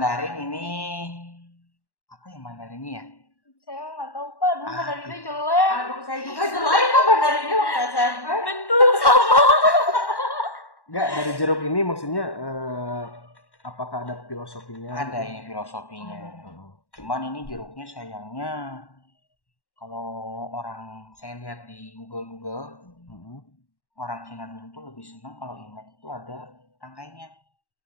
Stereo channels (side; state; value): right; late; 1.1 ms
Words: ini apa ya Mandarinnya ya? Saya nggak tahu Pak, dulu Mandarinnya jelek. Aduh, saya juga jelek kok Mandarinnya waktu SMP. Betul sama. Enggak, dari jeruk ini maksudnya apakah ada filosofinya? Ada ini filosofinya. Cuman ini jeruknya sayangnya kalau saya lihat di Google orang Cina dulu tuh lebih senang kalau Imlek itu ada tangkainya.